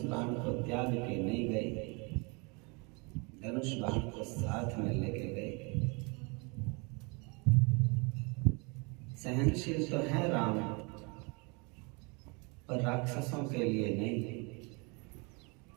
बाण को त्याग के नहीं गए, धनुष बाण को साथ में लेके गए। सहनशील तो है राम, पर राक्षसों के लिए नहीं।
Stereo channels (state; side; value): quieter; left; 30.6 dB